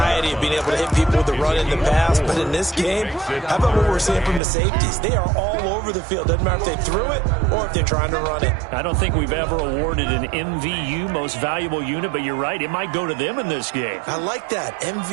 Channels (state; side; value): drops out; left; at 4.4 s